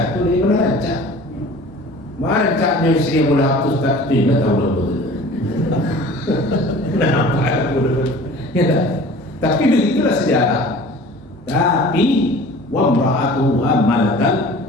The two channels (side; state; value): both; normal; correlation 0.44